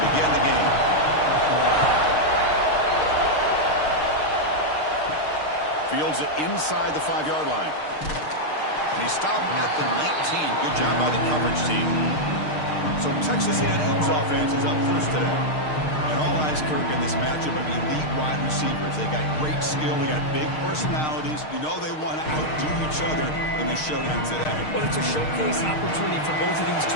begin the game. Fields it inside the 5-yard line. And he stopped at the 19. Good job by the coverage team. So Texas A&M's offense is up first today. And all eyes, Kirk, in this matchup of elite wide receivers. They got great skill. They got big personalities. You know they want to outdo each other in the showdown today. Well, it's a showcase opportunity for both of these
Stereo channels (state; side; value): late; right; 6.5 ms